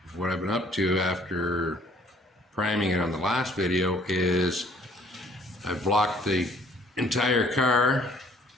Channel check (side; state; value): both; normal; correlation 0.58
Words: What I've been up to after priming it on the last video is I've blocked the entire car